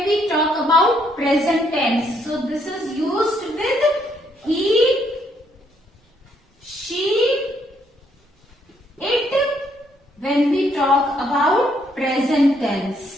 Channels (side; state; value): both; normal; correlation 0.71